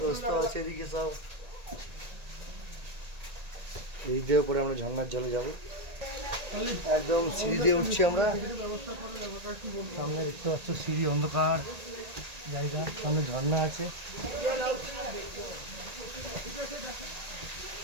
রাস্তা আছে এদিকে সব। এই দিয়ে পরে আমরা ঝর্ণার জলে যাবো, একদম সিঁড়ি দিয়ে উঠছি আমরা। সামনে দেখতে পাচ্ছ সিঁড়ি, অন্ধকার জায়গা, সামনে ঝর্ণা আছে।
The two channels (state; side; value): late; left; 1.8 ms